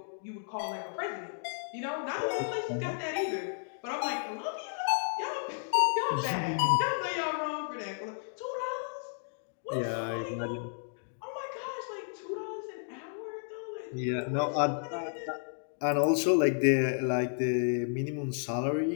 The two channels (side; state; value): right; silent; digital silence